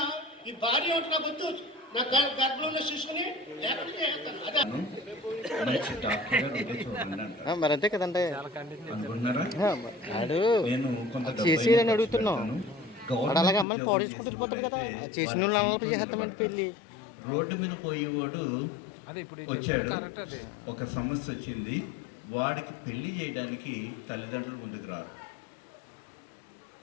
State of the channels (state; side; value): drops out; right; at 13.7 s